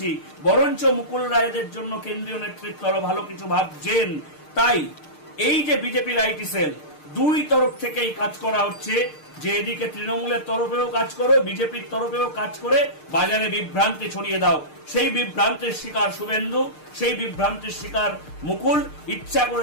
বরঞ্চ মুকুল রায়দের জন্য কেন্দ্রীয় নেতৃত্ব আরো ভালো কিছু ভাবছেন। তাই এই যে বিজেপির আইটি সেল, দুই তরফ থেকেই কাজ করা হচ্ছে যে এদিকে তৃণমূলের তরফেও কাজ করো, বিজেপির তরফেও কাজ করে বাজারে বিভ্রান্তি ছড়িয়ে দাও। সেই বিভ্রান্তির শিকার শুভেন্দু, সেই বিভ্রান্তির শিকার মুকুল। ইচ্ছা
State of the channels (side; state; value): right; late; 6.6 ms